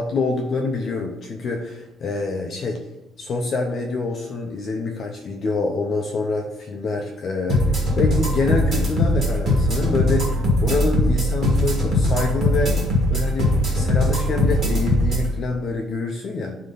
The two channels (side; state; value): both; normal; correlation 0.66